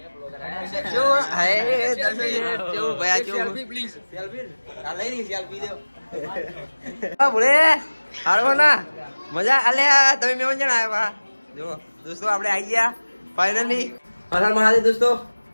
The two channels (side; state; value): both; inverted; correlation -1.00